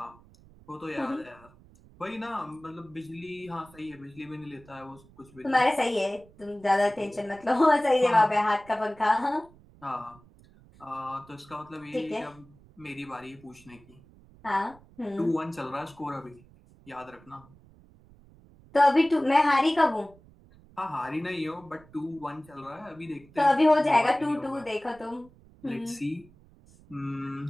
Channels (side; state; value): right; noise; rumble, 25 dB below the sound